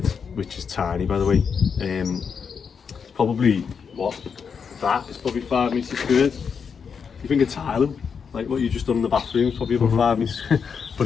which is tiny by the way, probably that is probably 5 metres squared. You think a tile, like what you just done in the bathroom, is probably about 5 metres. But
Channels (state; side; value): quieter; right; 6.3 dB